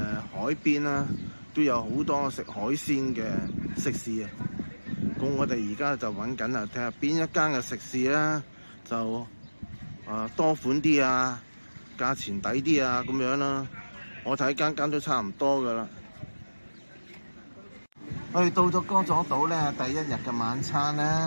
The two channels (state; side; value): inverted; both; correlation -1.00